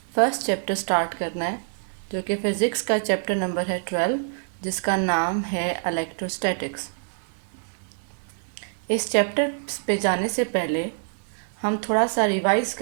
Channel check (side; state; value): left; silent; digital silence